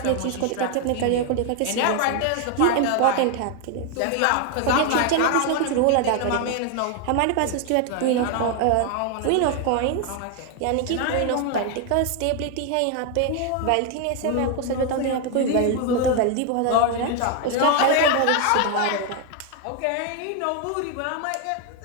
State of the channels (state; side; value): different; both; correlation 0.01